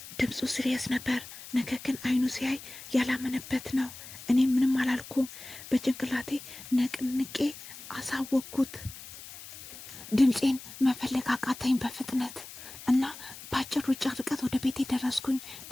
ድምፁ ሲሪየስ ነበር፣ ነገር ግን አይኑ ሲያይ ያላመነበት ነው። እኔ ምንም አላልኩም። በጭንቅላቴ ነቅንቄ አሳወቅኩት። ድምፄን መፈለግ አቃተኝ በፍጥነት። እና በአጭር ሩጫ ርቀት ወደ ቤቴ ደረስኩኝ።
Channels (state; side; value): noise; left; hiss, 15 dB below the sound